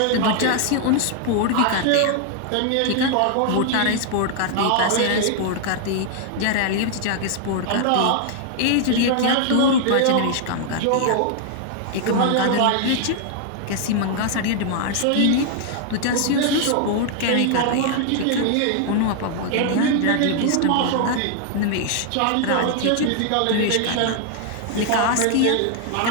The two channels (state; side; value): different; both; correlation 0.00